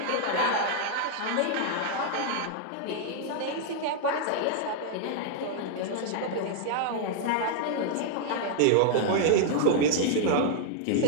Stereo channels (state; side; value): different; both; correlation -0.01